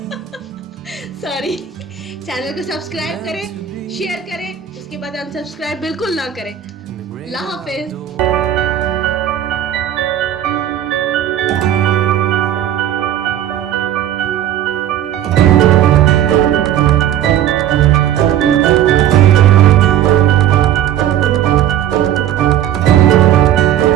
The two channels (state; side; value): quieter; left; 11.0 dB